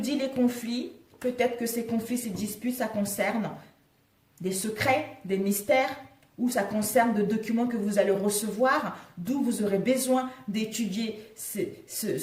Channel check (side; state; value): both; identical; correlation 1.00